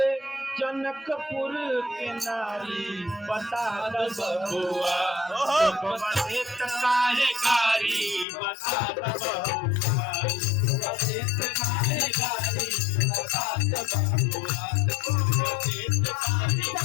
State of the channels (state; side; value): drops out; right; at 8.2 s